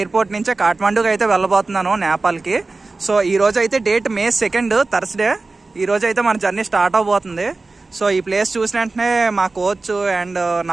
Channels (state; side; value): quieter; left; 3.6 dB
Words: నుంచే కాఠ్మాండూకి అయితే వెళ్ళబోతున్నాను, నేపాల్ కి. సో ఈ రోజు అయితే డేట్ May 2nd థర్స్డే. ఈ రోజు అయితే మన జర్నీ స్టార్ట్ అవబోతుంది. సో ఈ ప్లేస్ చూసిన వెంటనే మా కోచ్ అండ్